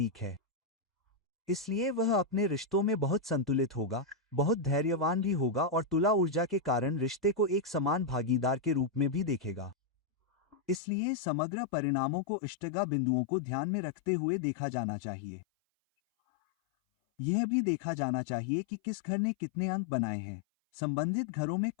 है, इसलिए वह अपने रिश्तों में बहुत संतुलित होगा, बहुत धैर्यवान भी होगा और तुला ऊर्जा के कारण रिश्ते को एक समान भागीदार के रूप में भी देखेगा। इसलिए समग्र परिणामों को इष्टगा बिंदुओं को ध्यान में रखते हुए देखा जाना चाहिए। यह भी देखा जाना चाहिए कि किस घर ने कितने अंक बनाए हैं, संबंधित घरों में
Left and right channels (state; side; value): drops out; right; at 10.8 s